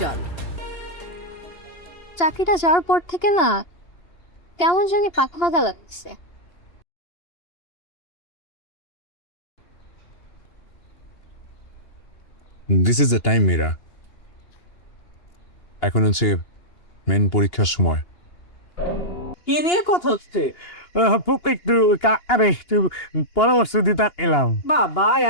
চাকরিটা যাওয়ার পর থেকে না কেমন জানি পাকা পাকা লাগছে। This is the time Meera. এখন হচ্ছে মেন পরীক্ষার সময়। কি নিয়ে কথা হচ্ছে? একটু পরামর্শ দিতে এলাম। বাবা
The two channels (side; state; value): right; late; 2.8 ms